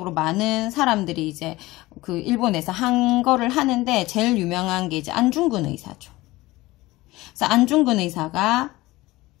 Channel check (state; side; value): quieter; right; 19.3 dB